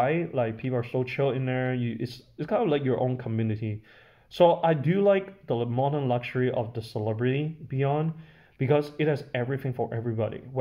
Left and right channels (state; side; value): identical; both; correlation 1.00